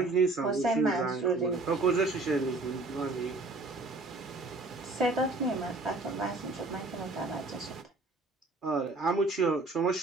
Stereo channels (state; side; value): quieter; left; 3.2 dB